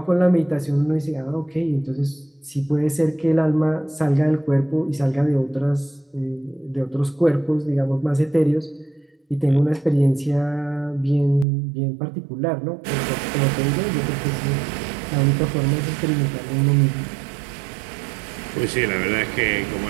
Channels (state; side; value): drops out; left; at 11.5 s